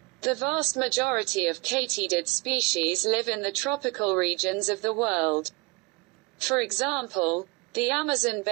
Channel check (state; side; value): quieter; left; 26.5 dB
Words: The vast majority of katydid species live in the tropical regions of the world. For example, the Amazon